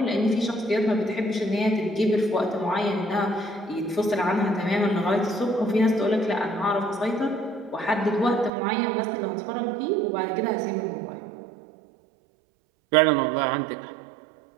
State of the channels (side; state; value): left; drops out; at 8.5 s